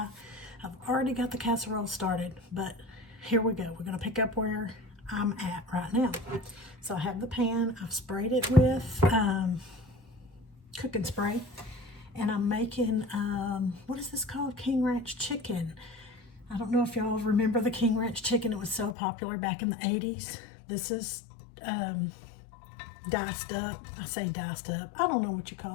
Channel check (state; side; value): drops out; right; at 18.9 s